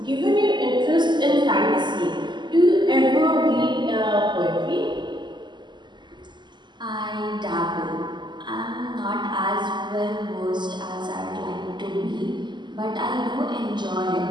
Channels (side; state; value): left; late; 0.21 ms